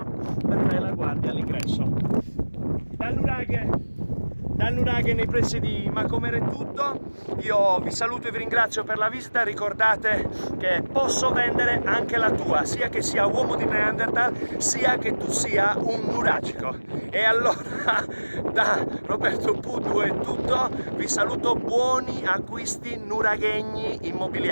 Per fare la guardia all'ingresso. Dal Nuraghe nei pressi di Macomer è tutto. Io vi saluto e vi ringrazio per la visita. Ricordate che posso vendere anche la tua, sia che sia uomo di Neanderthal, sia che tu sia un nuragico. E allora da Roberto Puddu è tutto. Vi saluto, buoni acquisti nuraghegni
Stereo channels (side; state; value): both; inverted; correlation -1.00